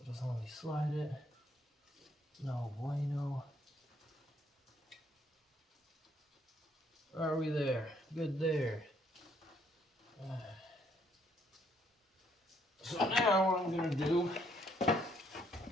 just let me slide it. No bueno. Are we there? Good there. So now what I'm going to do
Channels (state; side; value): normal; both; correlation 0.68